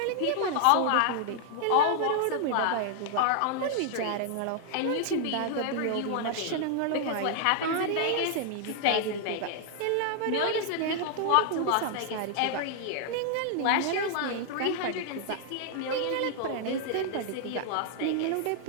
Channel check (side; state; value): both; different; correlation 0.00